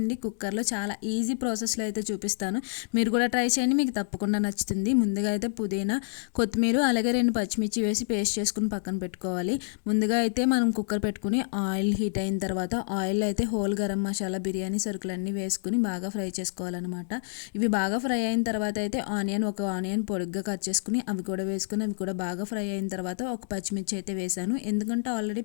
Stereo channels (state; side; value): silent; right; digital silence